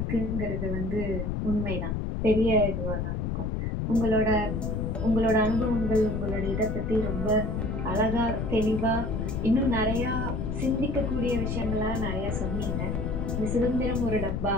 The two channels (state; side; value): noise; left; rumble, 1 dB below the sound